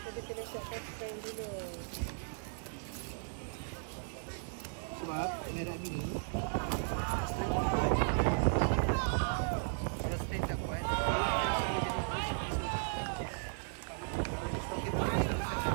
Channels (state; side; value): silent; left; digital silence